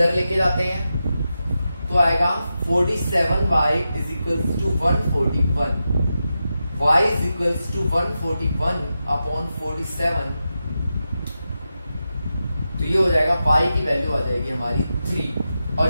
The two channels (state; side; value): inverted; both; correlation -0.90